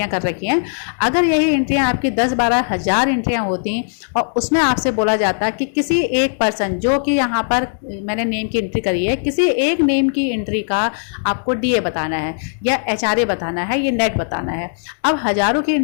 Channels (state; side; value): silent; right; digital silence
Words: कर रखी हैं। अगर यही एंट्रियाँ आपकी 10-12 हज़ार एंट्रियाँ होती और उसमें आपसे बोला जाता कि किसी एक पर्सन, जो कि यहाँ पर मैंने नेम की एंट्री करी है, किसी एक नेम की एंट्री का आपको डीए बताना है या एचआरए बताना है, ये नेट बताना है। अब हजारों की